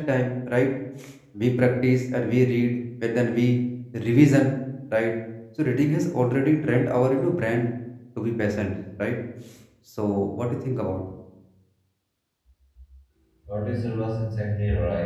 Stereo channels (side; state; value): both; identical; correlation 1.00